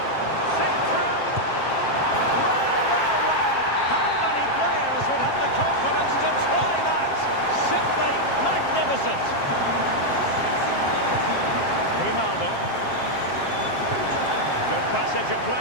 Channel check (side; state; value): right; late; 7.5 ms